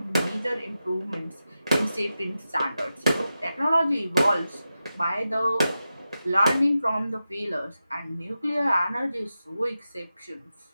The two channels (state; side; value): inverted; both; correlation -0.91